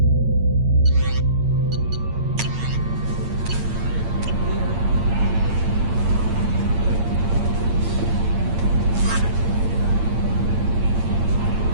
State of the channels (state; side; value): late; left; 8.8 ms